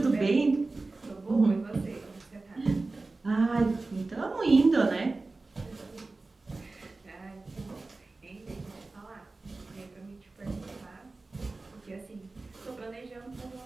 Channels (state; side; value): quieter; left; 3.4 dB